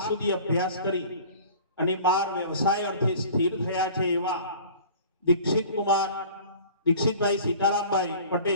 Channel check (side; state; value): both; inverted; correlation -0.45